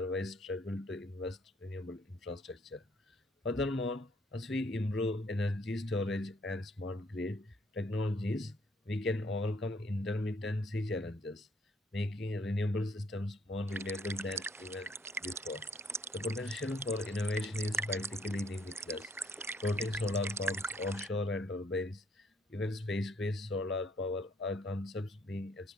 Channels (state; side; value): normal; both; correlation 0.66